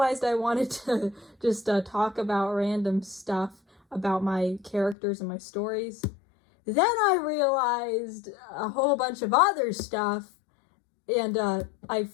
I wanted to just talk about random stuff about my characters and my stories. Then I realized a whole bunch of other stuff, and I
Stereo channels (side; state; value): right; drops out; at 5.0 s